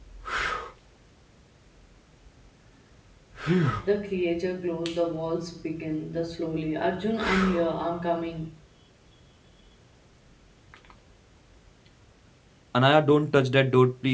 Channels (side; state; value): both; identical; correlation 1.00